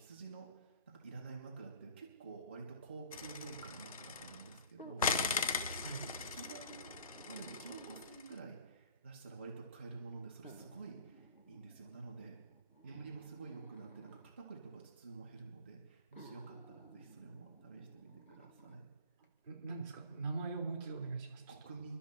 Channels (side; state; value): both; inverted; correlation -0.45